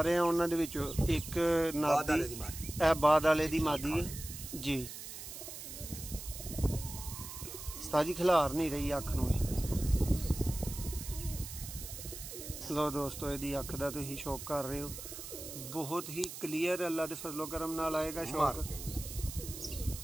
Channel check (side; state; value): right; noise; hiss, 10 dB below the sound